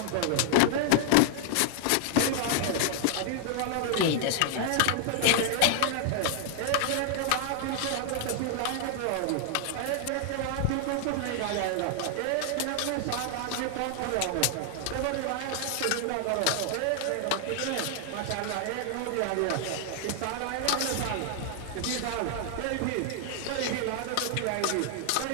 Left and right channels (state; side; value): different; both; correlation 0.00